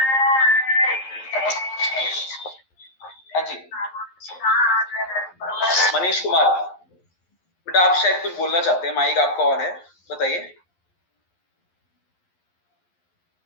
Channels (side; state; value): right; late; 11 ms